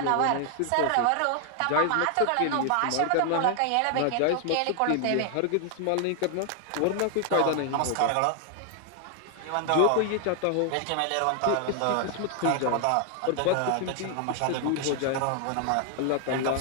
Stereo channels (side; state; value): both; different; correlation 0.00